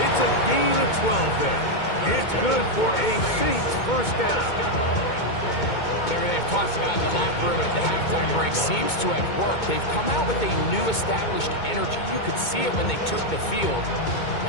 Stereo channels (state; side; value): late; right; 2.2 ms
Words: It's a gain of 12 there. It's good for a Saints first down. Everything they've talked about in the locker room at the halftime break seems to have worked. They've come out with a new established energy. You could see it when they took the field.